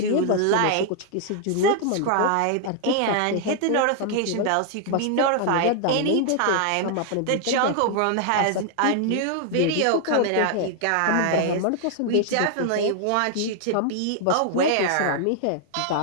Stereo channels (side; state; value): both; different; correlation 0.00